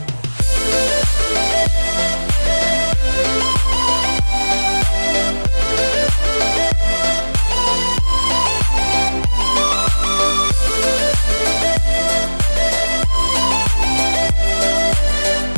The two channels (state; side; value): inverted; both; correlation -1.00